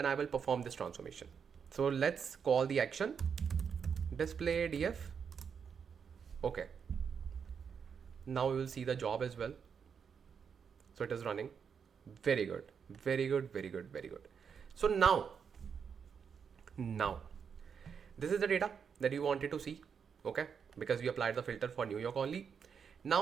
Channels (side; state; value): left; quieter; 6.8 dB